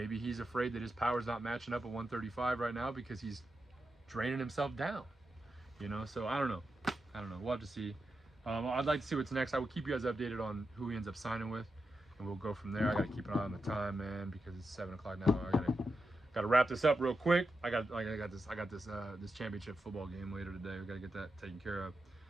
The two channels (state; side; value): normal; both; correlation 0.88